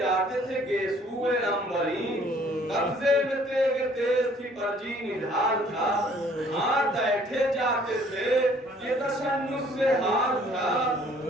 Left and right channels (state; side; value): normal; both; correlation 0.58